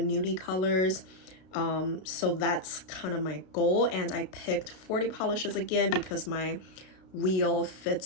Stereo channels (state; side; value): late; right; 32 ms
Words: nudie colors. So that's kind of my goal, and I picked 40 polishes again because my wheel